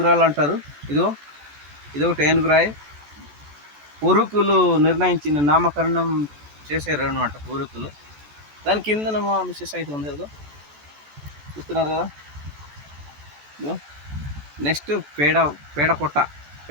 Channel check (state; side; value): late; left; 14 ms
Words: అంటారు. ఇదొకటి ఏనుగురాయి. పూర్వీకులు నిర్ణయించిన నామకరణం చేశారు అనమాట పూర్వీకులు. దాని కింద మా మిస్సెస్ అయితే ఉంది కదా చూస్తున్నారు కదా. నెక్స్ట్ పేడకొట్ట